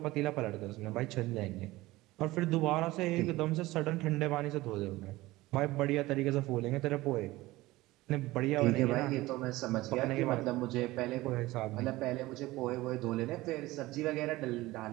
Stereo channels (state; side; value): quieter; left; 18.8 dB